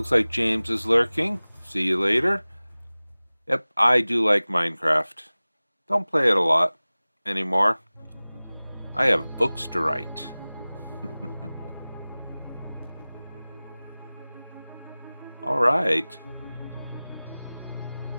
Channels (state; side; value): inverted; both; correlation -0.99